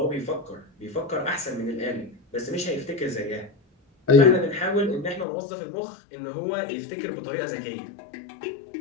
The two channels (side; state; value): right; drops out; at 5.2 s